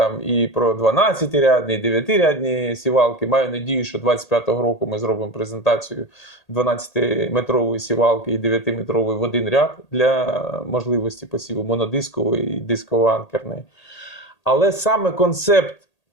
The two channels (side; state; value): right; late; 1.8 ms